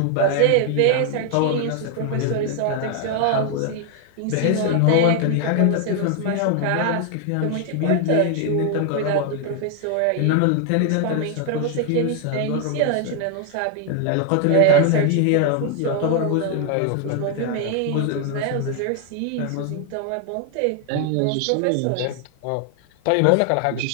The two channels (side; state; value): both; different; correlation 0.00